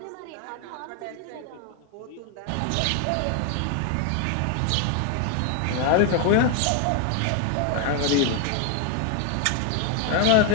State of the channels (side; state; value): both; different; correlation 0.01